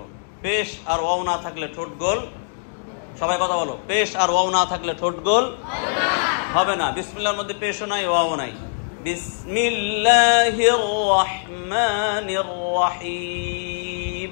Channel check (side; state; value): right; silent; digital silence